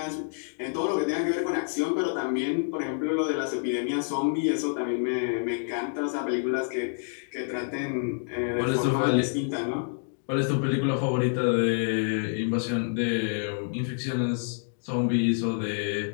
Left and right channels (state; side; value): silent; right; digital silence